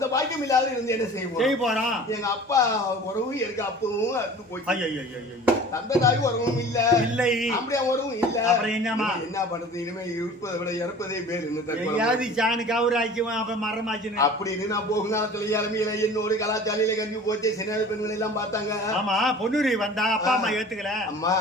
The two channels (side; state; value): both; normal; correlation 0.43